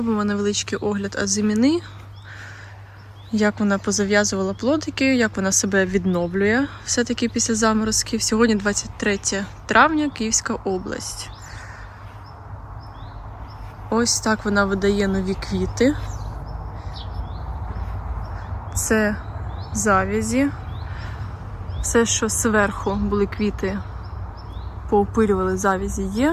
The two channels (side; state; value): both; identical; correlation 1.00